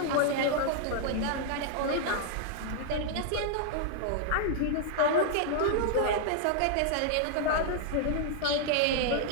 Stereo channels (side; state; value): both; different; correlation 0.00